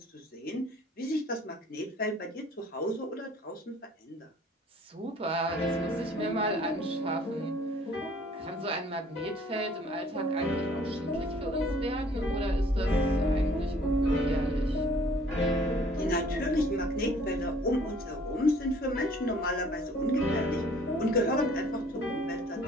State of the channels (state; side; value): normal; both; correlation 0.55